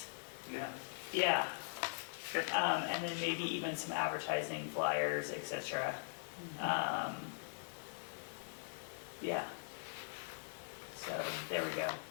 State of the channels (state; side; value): silent; right; digital silence